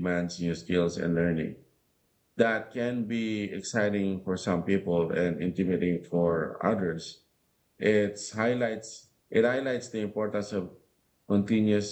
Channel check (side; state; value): both; identical; correlation 1.00